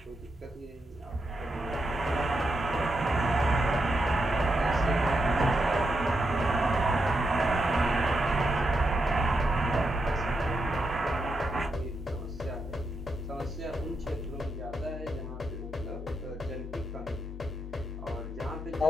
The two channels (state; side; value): normal; both; correlation 0.83